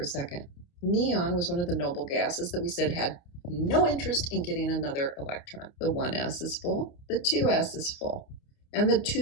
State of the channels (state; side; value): late; right; 29 ms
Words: second. Neon was one of the noble gases that we said had no interest in getting another electron. The 1s is full, the 2s is full, and the